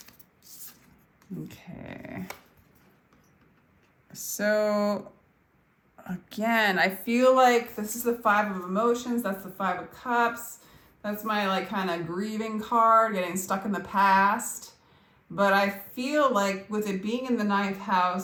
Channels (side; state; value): both; identical; correlation 1.00